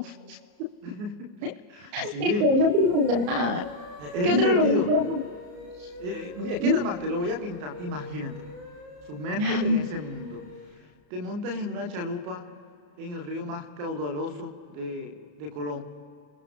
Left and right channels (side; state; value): left; late; 34 ms